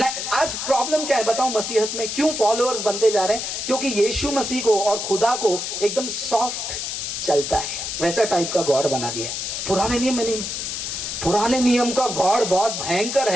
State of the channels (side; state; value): left; noise; hiss, 4 dB below the sound